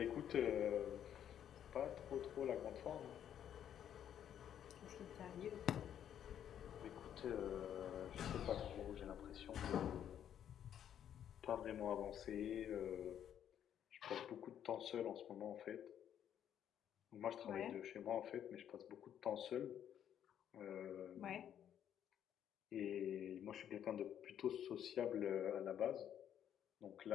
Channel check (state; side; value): quieter; right; 9.8 dB